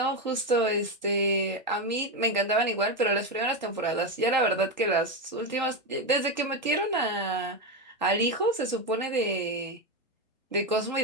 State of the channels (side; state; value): both; normal; correlation 0.11